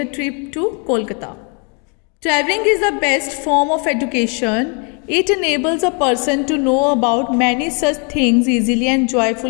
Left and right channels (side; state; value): right; quieter; 35.8 dB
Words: Trip to Kolkata. Traveling is the best form of education. It enables a person to know about many such things easily and